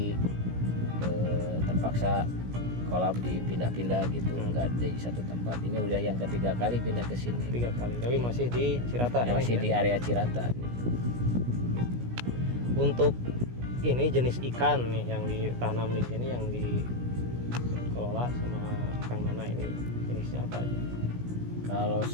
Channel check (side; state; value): left; late; 17 ms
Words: terpaksa kolam dipindah-pindah gitu, nggak di satu tempat. Ini udah yang ketiga kali pindah ke sini. 3 kali, tapi masih di Cirata. Masih di area Cirata. Gitu. Untuk ini jenis ikan nih yang ditanam di sini, yang dikelola sama Kang Nana ini jenisnya apa aja? Kalau